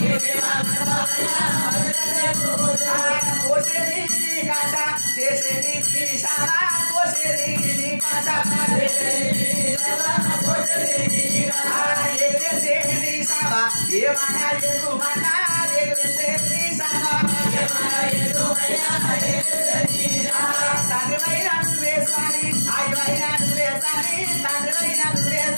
కోసేది నీ కాశ చేసేది నీ శాల కోసేది నీ కాశ ఎగరేసేది నీ సావ ఏమన్నా ఎగుమన్నా ఎగరేసేది నీ సావ తండ్రివైన నువ్వే స్వామి ఆయువైన నువ్వే స్వామి తండ్రివైన నువ్వే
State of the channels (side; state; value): both; inverted; correlation -1.00